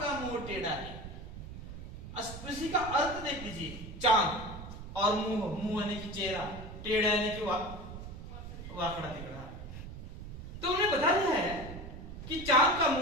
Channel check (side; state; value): right; noise; rumble, 11 dB below the sound